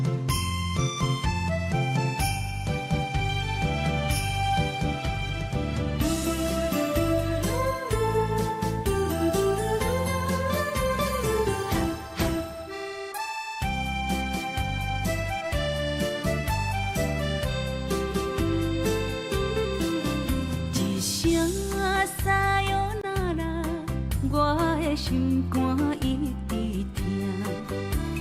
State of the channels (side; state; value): both; identical; correlation 1.00